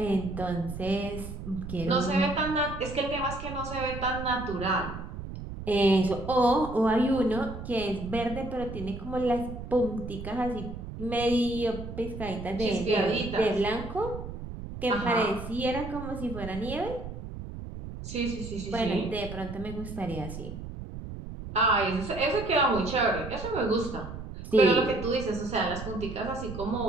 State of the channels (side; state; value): right; noise; rumble, 9 dB below the sound